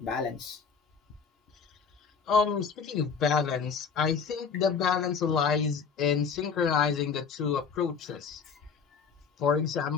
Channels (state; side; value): quieter; right; 6.0 dB